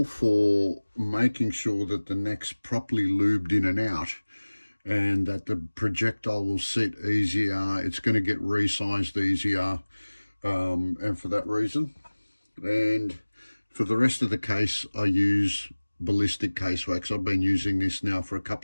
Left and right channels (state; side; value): inverted; both; correlation -1.00